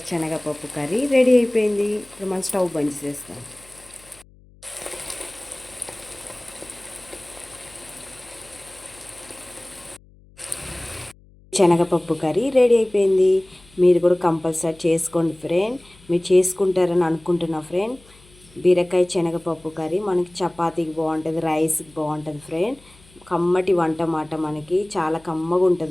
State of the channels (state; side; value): noise; left; hum, 26 dB below the sound